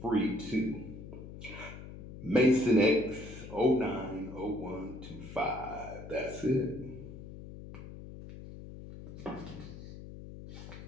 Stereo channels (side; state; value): left; noise; hum, 13 dB below the sound